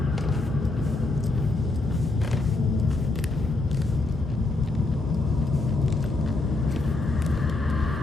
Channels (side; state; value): right; quieter; 3.1 dB